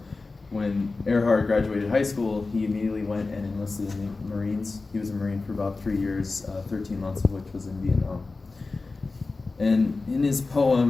when Earhart graduated high school, he immediately went and enlisted in the Marines. He was a Marine for about 3 years, 13 months of which was in Vietnam. And in his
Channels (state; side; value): quieter; right; 3.7 dB